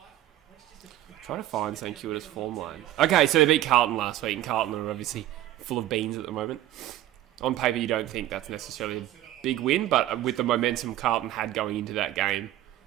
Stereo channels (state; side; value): quieter; left; 13.6 dB